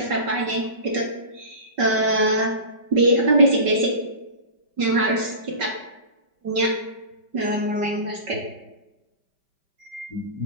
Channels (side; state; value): left; late; 5.2 ms